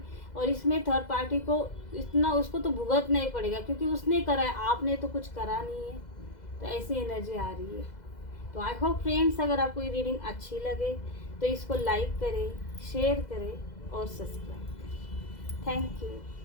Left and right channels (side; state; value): right; late; 2.0 ms